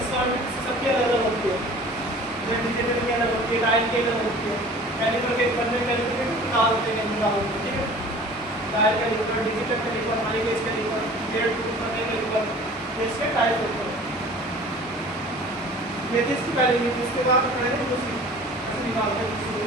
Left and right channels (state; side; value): normal; both; correlation 0.45